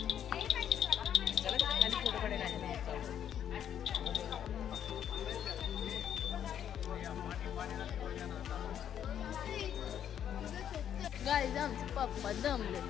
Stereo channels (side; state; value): right; quieter; 9.6 dB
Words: गाईज आमचे पप्पा दमले.